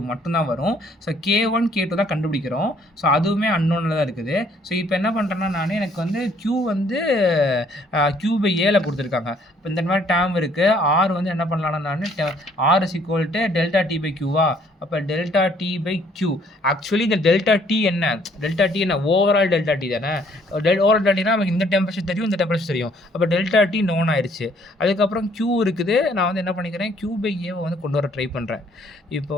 மட்டும்தான் வரும். ஸோ K1 K2 தான் கண்டுபிடிக்கிறோம். ஸோ அதுவுமே அன்னோனில் தான் இருக்குது. ஸோ இப்போ என்ன பண்ணுறேன்னா, நான் எனக்கு வந்து Q வந்து Q/Aல கொடுத்துருக்காங்க. இப்போ இந்த மாதிரி டேர்ம் இருக்குது. R வந்து என்ன பண்ணலான்னா, நான் R is equal to delta T/Qவா. அப்போ டெல்டா T/Q. ஆக்சுவலி இந்த டெல்டா T என்ன ஓவரால் டெல்டா T தானே. ஓவரால் டெல்டா நமக்கு இந்த டெம்பரேச்சர் தெரியும், இந்த டெம்பரேச்சர் தெரியும். அப்போ டெல்டா T நோன் ஆயிடுச்சு. அதுக்கப்புறம் Q இருக்குது. நான் வந்து என்ன பண்ணிக்கிறேன், Q/Aவை வந்து கொண்டு வர ட்ரை பண்ணுறேன். இப்போ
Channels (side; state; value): both; normal; correlation 0.63